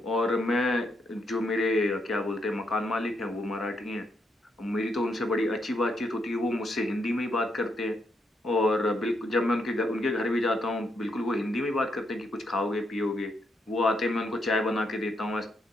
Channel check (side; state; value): both; normal; correlation 0.78